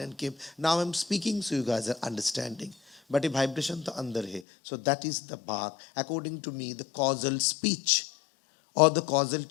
and keep. Now I'm speaking, so you guys are understanding. But a vibration to andar hai. So that is the bhag. According to me, the causal speech or the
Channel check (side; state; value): right; drops out; at 4.4 s